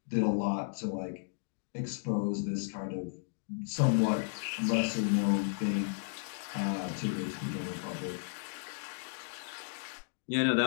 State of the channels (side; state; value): right; silent; digital silence